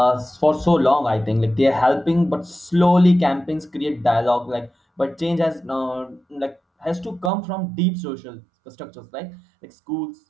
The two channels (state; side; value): drops out; left; at 7.3 s